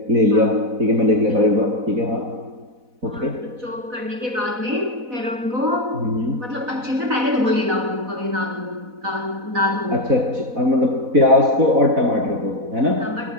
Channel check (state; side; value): late; left; 4.0 ms